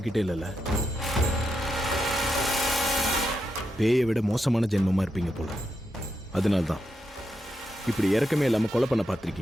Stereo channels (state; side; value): normal; both; correlation 0.85